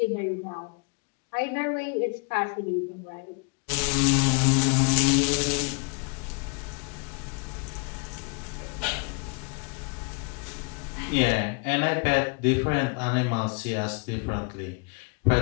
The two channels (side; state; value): right; quieter; 34.5 dB